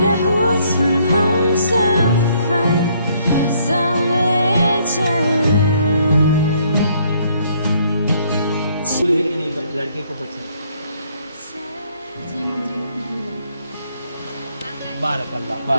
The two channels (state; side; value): inverted; both; correlation -0.67